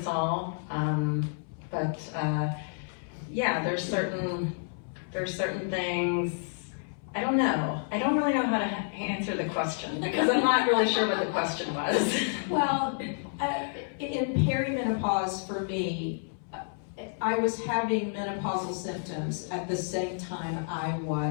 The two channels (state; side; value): silent; right; 58 dB below the other